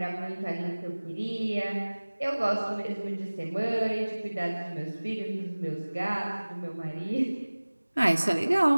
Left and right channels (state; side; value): inverted; both; correlation -1.00